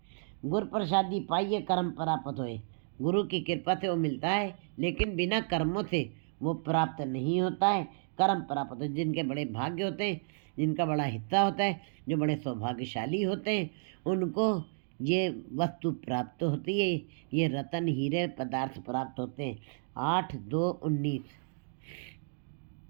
गुरु प्रसादी पाइए, कर्म प्राप्त होए। गुरु की कृपा से वो मिलता है, लेकिन बिना कर्मों से वो प्राप्त नहीं होता है। कर्म प्राप्त होते हैं जिनके बड़े भाग्य होते हैं, जिनका बड़ा हिस्सा होता है, जो बड़े सौभाग्यशाली होते हैं, उनको ये वस्तु प्राप्त होती है, ये रतन हीरे पदार्थ प्राप्त होते हैं। 8/2/19।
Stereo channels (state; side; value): silent; left; digital silence